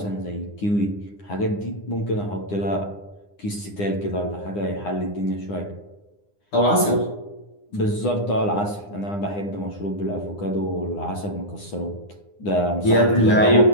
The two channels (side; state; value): right; late; 9.8 ms